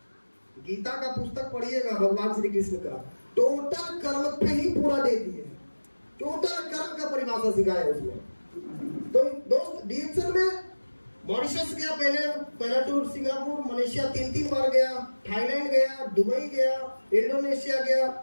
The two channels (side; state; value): both; inverted; correlation -1.00